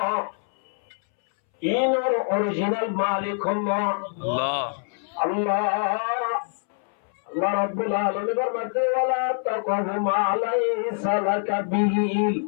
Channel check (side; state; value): right; silent; 62 dB below the other